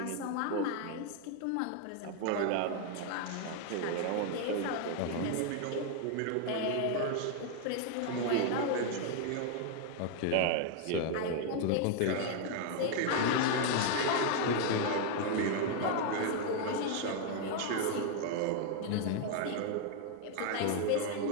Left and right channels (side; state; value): both; different; correlation 0.00